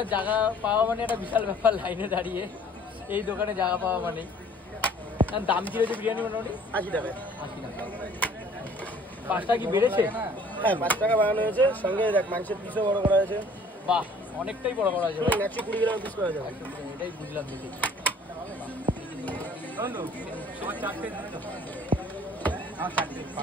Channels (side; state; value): both; normal; correlation 0.54